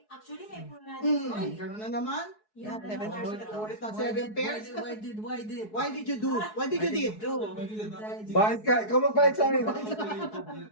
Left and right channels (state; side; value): late; right; 4.7 ms